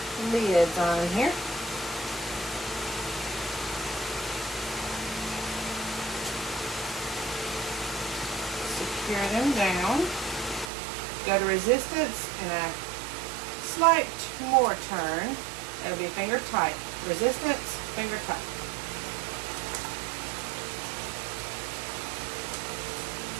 lids on here. Secure them down. Go to resistance and a slight more turn. It'll be finger tight. Resistance, finger tight.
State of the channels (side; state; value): left; drops out; at 10.7 s